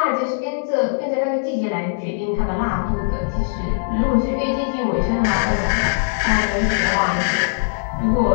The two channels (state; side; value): silent; right; digital silence